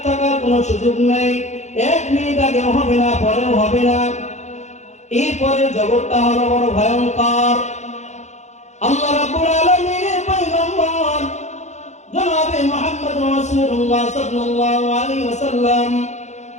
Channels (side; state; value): right; late; 0.33 ms